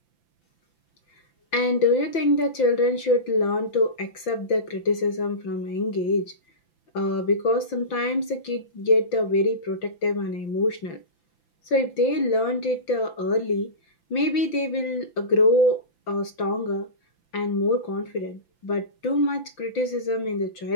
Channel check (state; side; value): late; right; 5.9 ms